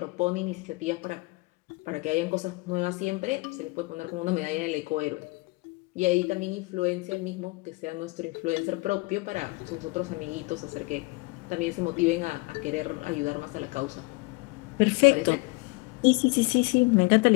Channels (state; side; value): quieter; right; 25.6 dB